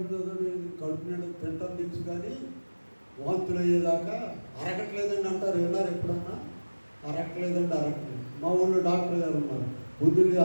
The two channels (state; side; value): inverted; both; correlation -1.00